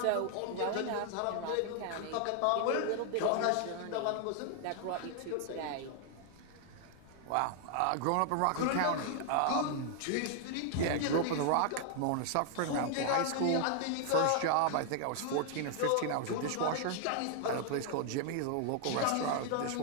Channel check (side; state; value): both; different; correlation 0.00